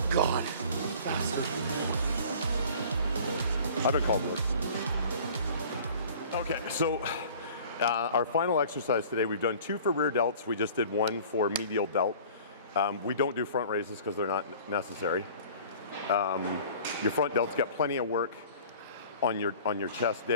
God. I've been called worse. Okay, so our final exercise today, we've done 2 for rear delts. We just did 1 for medial delt. We don't do front raises because they're not necessary. Your front delts get plenty of work on your chest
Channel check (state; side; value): inverted; both; correlation -0.46